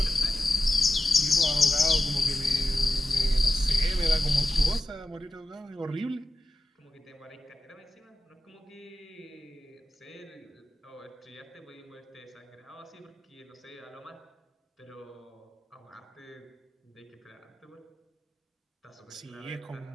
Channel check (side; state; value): both; normal; correlation 0.91